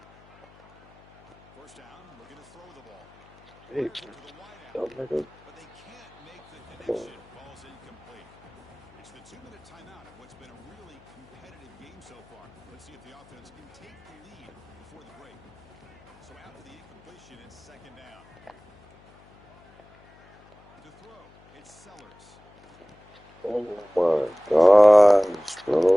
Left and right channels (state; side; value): noise; left; hum, 27 dB below the sound